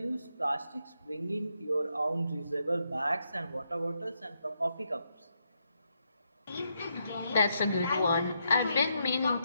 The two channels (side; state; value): both; inverted; correlation -0.80